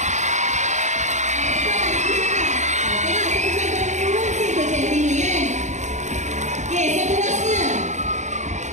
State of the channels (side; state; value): left; late; 0.34 ms